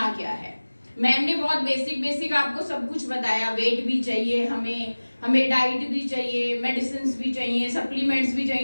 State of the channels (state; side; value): inverted; both; correlation -1.00